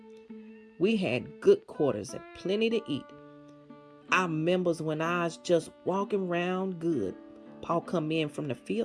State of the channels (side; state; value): both; identical; correlation 1.00